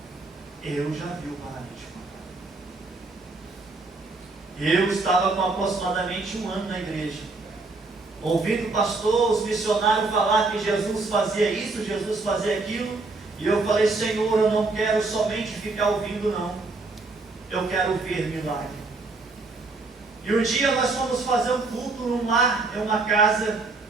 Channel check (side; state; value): left; quieter; 3.6 dB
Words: Eu já vi o paralítico andar. Eu estava com aproximadamente 1 ano na igreja, ouvindo o pastor, os missionários falar que Jesus fazia isso, Jesus fazia aquilo, e eu falei: Senhor, eu não quero somente ficar ouvindo, não. Eu quero ver milagre. E um dia nós fomos fazer um culto num lar, em uma casa.